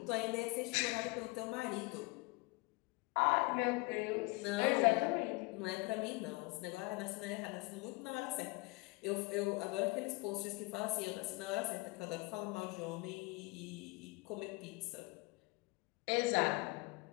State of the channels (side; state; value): right; quieter; 25.3 dB